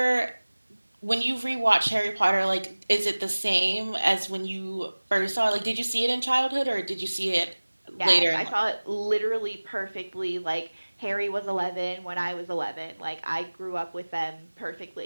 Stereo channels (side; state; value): both; inverted; correlation -1.00